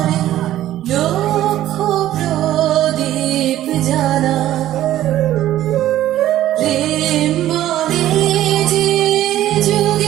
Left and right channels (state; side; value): quieter; left; 13.3 dB